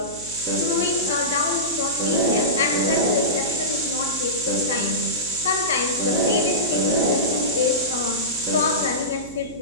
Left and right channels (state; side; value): noise; right; hum, 18 dB below the sound